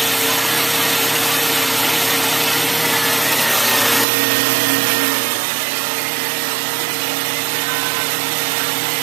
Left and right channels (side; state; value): left; drops out; at 4.0 s